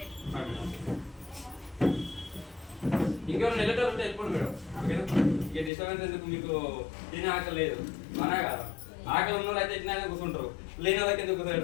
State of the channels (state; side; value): drops out; right; at 5.7 s